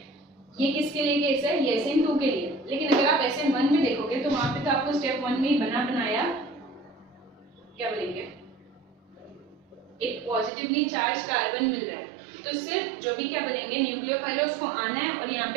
ये किसके लिए केस है, ये SN2 के लिए। लेकिन अगर आप SN1 में देखोगे तो वहां पे तो आपको स्टेप 1 में ही बना बनाया क्या बोलेंगे एक पॉजिटिवली चार्ज कार्बन मिल रहा है। तो सिर्फ जो भी क्या बोलेंगे न्यूक्लियोफाइल है उसको आना है और यहाँ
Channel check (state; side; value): drops out; left; at 10.5 s